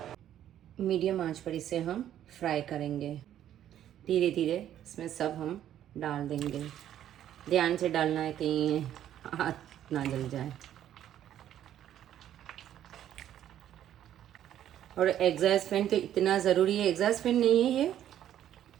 मीडियम आंच पर इसे हम फ्राई करेंगे। धीरे धीरे इसमें सब हम डाल देंगे। ध्यान से डालना है कहीं हाथ ना जल जाए। और एग्जॉस्ट फैन तो इतना ज़रूरी है। एग्जॉस्ट फैन नहीं है ये,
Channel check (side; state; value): left; quieter; 11.2 dB